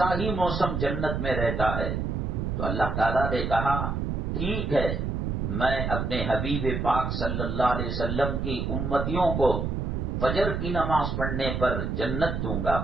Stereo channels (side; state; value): right; noise; rumble, 1 dB below the sound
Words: ہی موسم جنت میں رہتا ہے۔ تو اللہ تعالیٰ نے کہا ٹھیک ہے، میں اپنے حبیب پاک صلی اللہ علیہ وسلم کی امتیوں کو فجر کی نماز پڑھنے پر جنت دوں گا۔